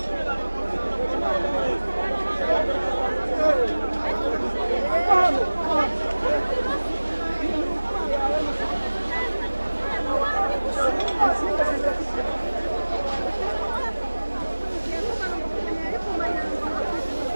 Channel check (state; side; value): inverted; both; correlation -1.00